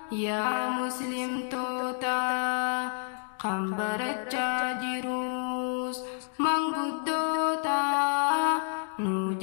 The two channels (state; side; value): silent; right; 58 dB below the other